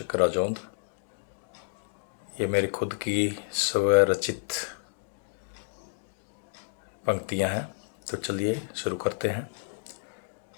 राजौंद। ये मेरी खुद की स्वरचित पंक्तियाँ हैं। तो चलिए शुरू करते हैं।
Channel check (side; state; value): right; silent; digital silence